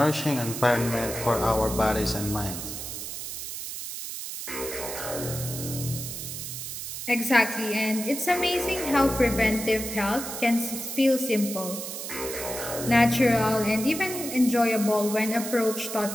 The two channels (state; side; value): noise; right; hiss, 7 dB below the sound